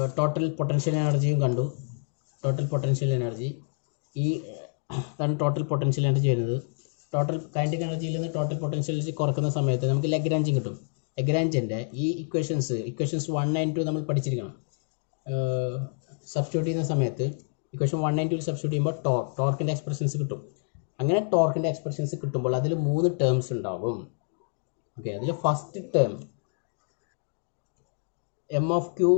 ടോട്ടൽ പൊട്ടൻഷ്യൽ എനർജിയും കണ്ടു. ടോട്ടൽ പൊട്ടൻഷ്യൽ എനർജി ഈ അതാണ് ടോട്ടൽ പൊട്ടൻഷ്യൽ എനർജി വരുന്നത്. ടോട്ടൽ കൈനറ്റിക് എനർജിയിൽ നിന്ന് ടോട്ടൽ പൊട്ടൻഷ്യൽ എനർജി കുറക്കുന്ന സമയത്ത് നമുക്ക് ലഗ്രാഞ്ചും കിട്ടും. ലഗ്രാഞ്ചിൻ്റെ ഈ ഇക്വേഷൻസ് 1 and 2 നമ്മൾ പഠിച്ചിരിക്കണം. സബ്സ്റ്റിറ്റ്യൂട്ട് ചെയ്യുന്ന സമയത്ത് ഇക്വേഷൻ 1 and 2 സബ്സ്റ്റിറ്റ്യൂട്ട് ചെയ്യുമ്പോൾ ടോർക്കിൻ്റെ എക്സ്പ്രഷൻസ് കിട്ടും. അങ്ങനെ ടോർക്കിൻ്റെ എക്സ്പ്രഷൻസ് കിട്ടുമ്പോൾ അതിൽ 3 ടേംസ് ഉണ്ടാവും. ഓക്കെ, അതിൽ first term m of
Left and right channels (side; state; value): right; silent; 60 dB below the other